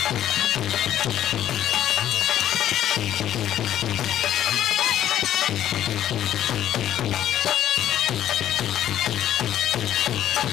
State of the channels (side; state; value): right; quieter; 11.6 dB